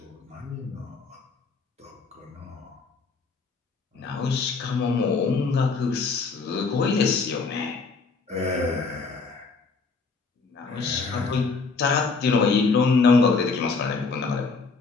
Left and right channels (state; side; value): quieter; right; 4.5 dB